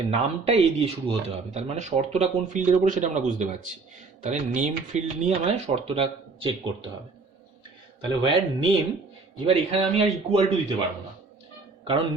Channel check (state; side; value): quieter; left; 4.1 dB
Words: নামটা এ দিয়ে শুরু হতে হবে। তার মানে শর্তটা কোন ফিল্ডের ওপরে সেটা আমরা বুঝতে পারছি। তাহলে নেম ফিল্ড নিয়ে আমায় শর্তটা চেক করতে হবে। তাহলে ওয়্যার নেম, এবার এখানে আমি আর ইকুয়াল টু দিতে পারবো না, কারণ